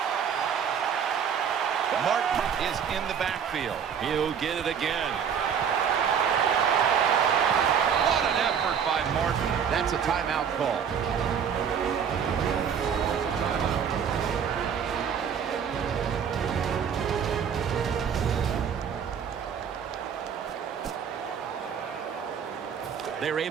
Martin is in the backfield. He'll get it again. What an effort by Martin. That's a timeout call. They're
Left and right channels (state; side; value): quieter; left; 7.6 dB